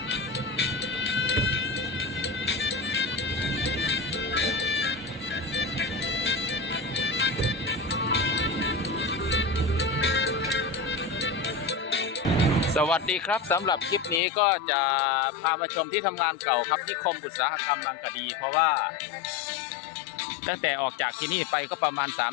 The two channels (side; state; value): right; drops out; at 14.2 s